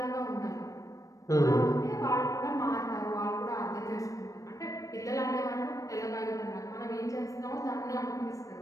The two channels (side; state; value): right; late; 0.16 ms